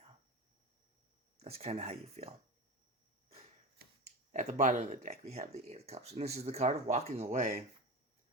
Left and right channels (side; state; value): both; normal; correlation 0.26